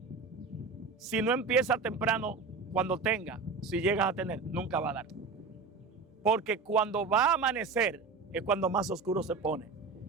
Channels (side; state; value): left; quieter; 4.6 dB